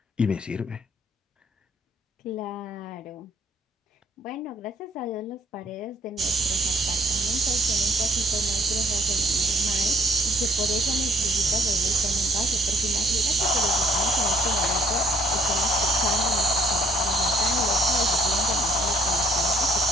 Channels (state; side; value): normal; both; correlation 0.62